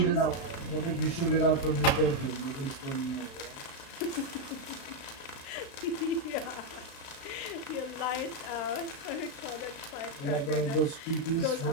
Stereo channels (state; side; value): late; right; 36 ms